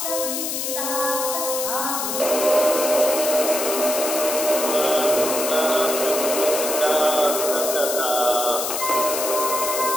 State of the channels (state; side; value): noise; left; hiss, 2 dB below the sound